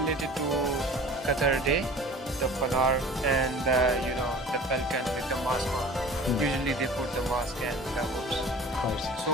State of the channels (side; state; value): both; normal; correlation 0.42